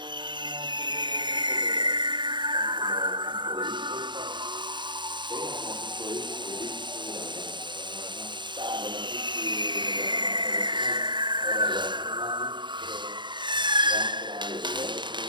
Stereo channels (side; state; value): left; late; 0.22 ms